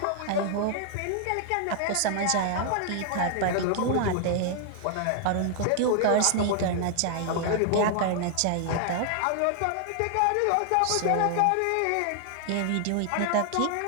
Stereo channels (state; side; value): different; both; correlation 0.00